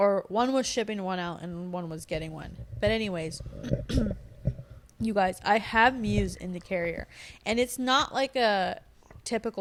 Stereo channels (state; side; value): identical; both; correlation 1.00